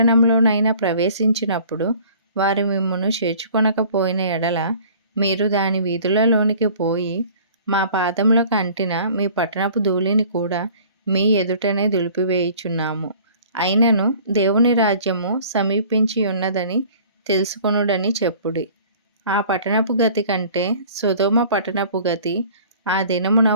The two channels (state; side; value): inverted; both; correlation -0.49